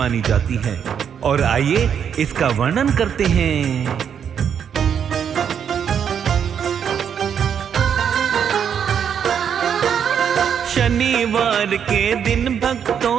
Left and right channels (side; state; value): left; quieter; 8.0 dB